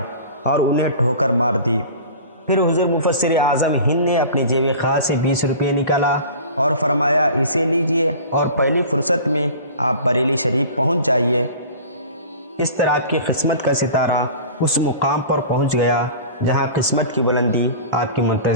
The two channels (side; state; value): both; inverted; correlation -0.39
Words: اور انہیں ٹھوکر مار دی۔ پھر حضور مفسر اعظم ہند نے اپنی جیب خاص سے 20 روپے نکالا اور فرمایا، اسے لیجئے اور پہلی فرصت میں آپ بریلی شریف پہنچ جائیے۔ اس طرح آپ کی قسمت کا ستارہ اس مقام پر پہنچ گیا جہاں قسمت کی بلندی آپ کی